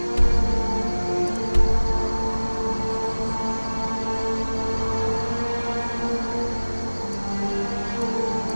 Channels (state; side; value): inverted; both; correlation -1.00